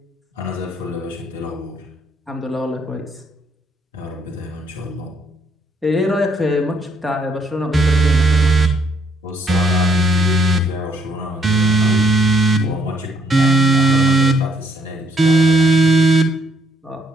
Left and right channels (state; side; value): normal; both; correlation 0.69